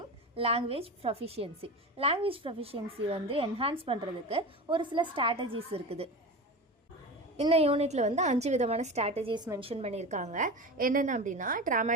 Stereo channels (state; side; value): normal; both; correlation 0.28